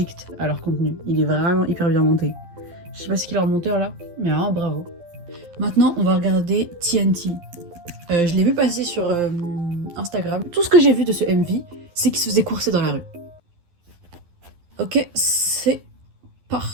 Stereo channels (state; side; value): late; left; 12 ms